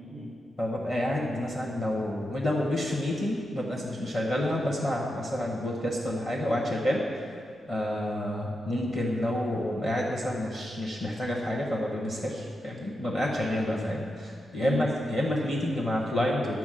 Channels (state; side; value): normal; both; correlation 0.87